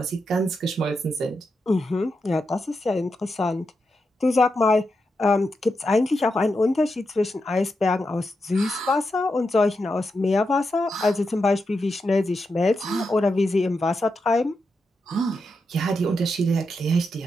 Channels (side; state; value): both; normal; correlation 0.86